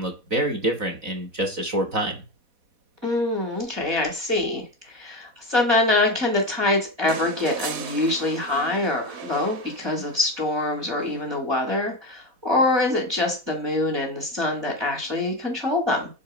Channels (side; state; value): left; late; 4.1 ms